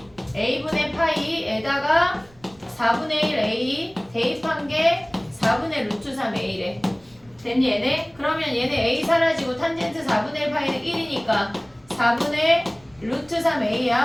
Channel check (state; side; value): noise; right; rumble, 28 dB below the sound